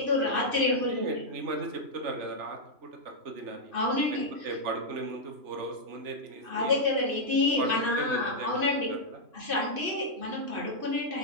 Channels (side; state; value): left; late; 3.0 ms